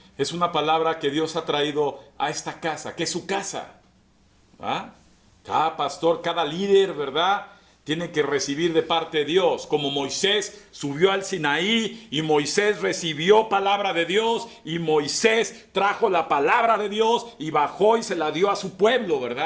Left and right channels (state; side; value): identical; both; correlation 1.00